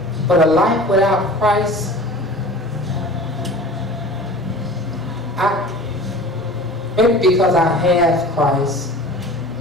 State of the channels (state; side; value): normal; both; correlation 0.40